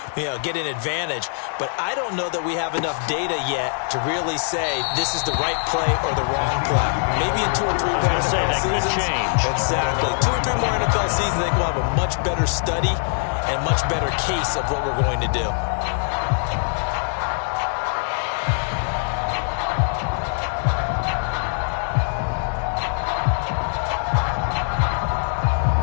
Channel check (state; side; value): silent; right; digital silence